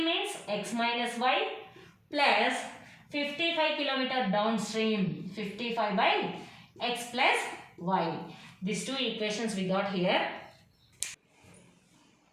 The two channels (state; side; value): identical; both; correlation 1.00